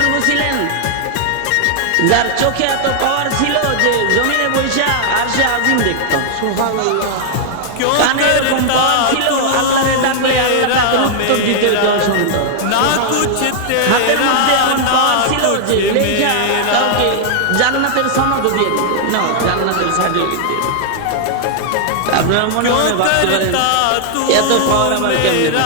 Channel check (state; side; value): different; both; correlation -0.01